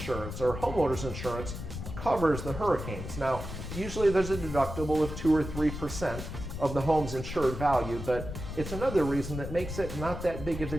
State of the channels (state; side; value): noise; left; rumble, 8 dB below the sound